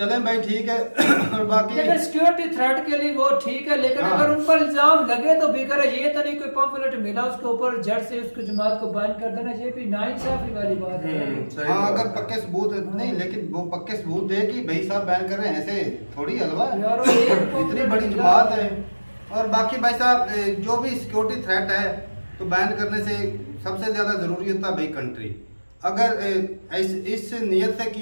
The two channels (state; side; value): inverted; both; correlation -1.00